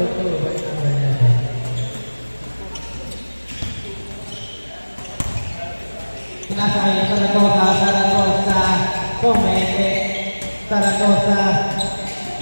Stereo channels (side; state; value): both; inverted; correlation -1.00